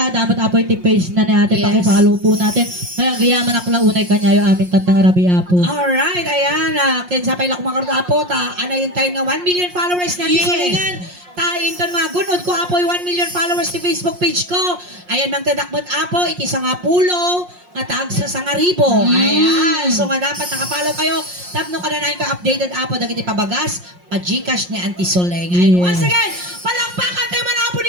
dapat apo iti page na natin Yes. paki-follow po natin. Ay agyaman akla unay kanyayo amin tatang Marabi Apo. Alright, ayan. Kinsapay lang kumakarot apo. Anayin tayo nga 1 million followers na Yes. Sulingan. Tayin ton mga gunod ko apo 1 million followers ti Facebook page ko. Ayan mang tadakbot apo. Iti sa nga pulo. Nga taag sa sangaribo. Ayan. So nga dapat nakapollow kayo. Tapno ka na ka updated apo. Dagiti pabagas. Pa-Gcash ni Auntie Suleng. Ayan. Yes. Once again, palakpakan tayo man apo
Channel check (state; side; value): late; left; 5.6 ms